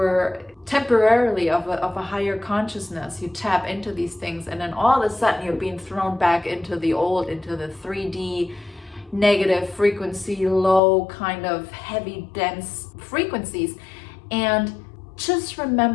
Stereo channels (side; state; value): right; drops out; at 10.8 s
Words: temporarily of a higher consciousness. You tap into these things, and then all of a sudden you're being thrown back into the old, into the 3D negative frequency, low kind of heavy dense frequencies. And just